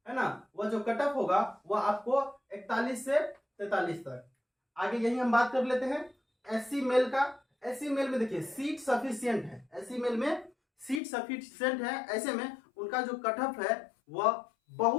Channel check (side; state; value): right; drops out; at 11.0 s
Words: है ना वह जो कट ऑफ होगा वह आपको 41 से 43 तक। आगे यही हम बात कर लेते हैं एससी मेल का। एससी मेल में देखिए सीट सफिशिएंट है, एससी मेल में सीट सफिशिएंट है। ऐसे में उनका जो कट ऑफ है वह